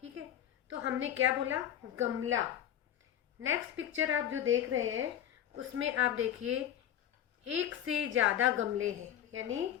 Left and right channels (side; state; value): right; quieter; 10.7 dB